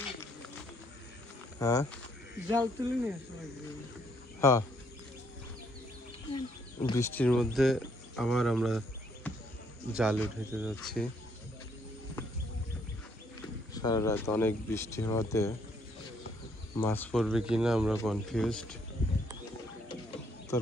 হ্যাঁ জাল তুলে নিয়ে হ্যাঁ বৃষ্টির মধ্যে আবার আমরা জাল উঠাইতে যাচ্ছি। সারা রাত অনেক বৃষ্টি হওয়াতে মাছ পড়বে কিনা আমরা কনফিউজড।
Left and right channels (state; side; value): normal; both; correlation 0.69